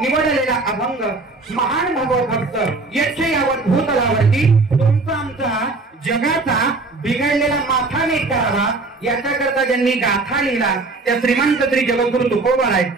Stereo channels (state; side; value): quieter; left; 3.5 dB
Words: अभंग महान भगवत भक्त यक्ष यावत भूतलावरती तुमचा आमचा जगाचा बिघडलेला माथा नीट करावा याच्याकरता ज्यांनी गाथा लिहिला त्या श्रीमंत श्री जगद्गुरु तुकोबाराय